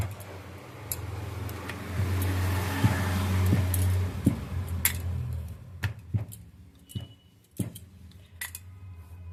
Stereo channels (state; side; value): identical; both; correlation 1.00